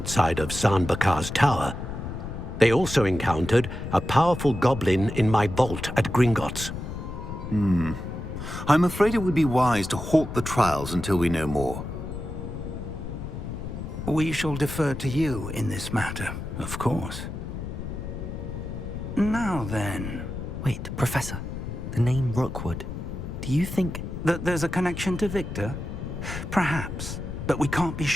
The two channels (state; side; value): noise; left; rumble, 7 dB below the sound